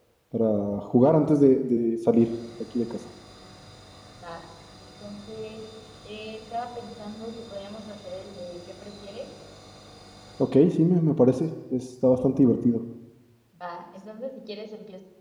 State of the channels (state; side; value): identical; both; correlation 1.00